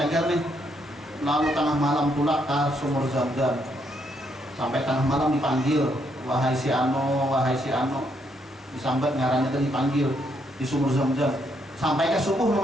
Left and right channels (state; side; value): normal; both; correlation 0.74